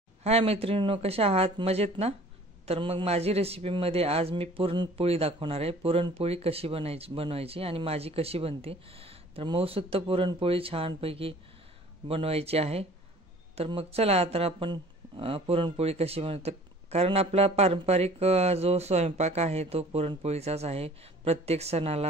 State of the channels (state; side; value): normal; both; correlation 0.50